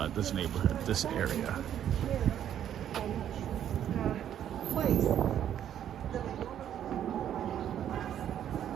this neighborhood, this area.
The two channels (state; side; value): quieter; left; 10.2 dB